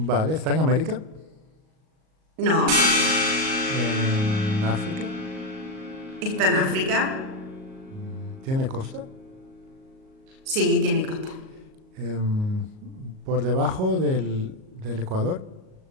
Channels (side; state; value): left; late; 38 ms